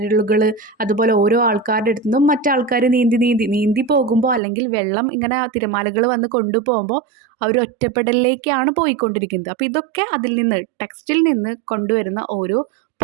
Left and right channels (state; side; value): drops out; left; at 4.4 s